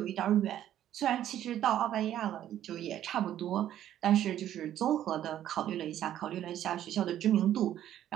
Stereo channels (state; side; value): quieter; left; 11.6 dB